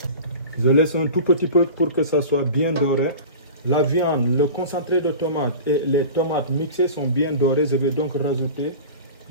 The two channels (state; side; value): inverted; both; correlation -0.35